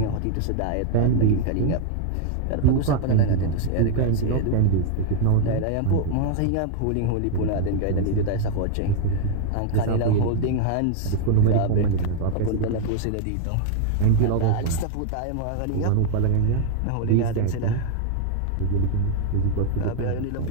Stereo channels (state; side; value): different; both; correlation 0.01